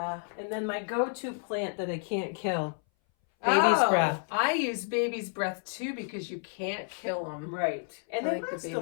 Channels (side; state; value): right; silent; 58 dB below the other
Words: And then my go-to plant that I can't kill. Baby's breath. I use baby's breath too because you can't kill them. Right. And they last a